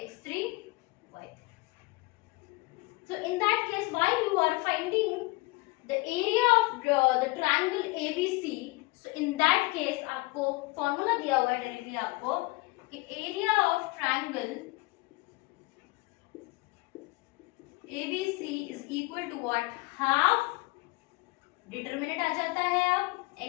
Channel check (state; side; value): quieter; right; 23.7 dB